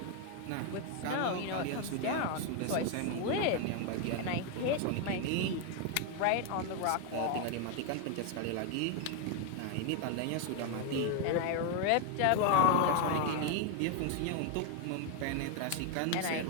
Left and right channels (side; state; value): both; different; correlation 0.01